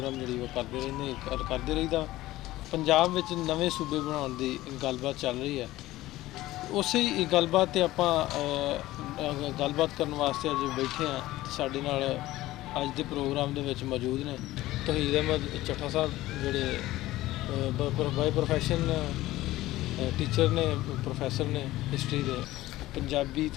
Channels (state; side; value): quieter; right; 16.7 dB